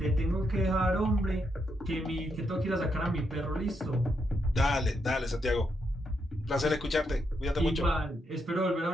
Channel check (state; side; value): normal; both; correlation 0.80